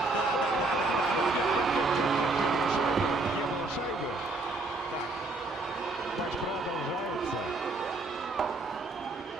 Не было шайбы. Так, Матч продолжается.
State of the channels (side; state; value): left; quieter; 3.3 dB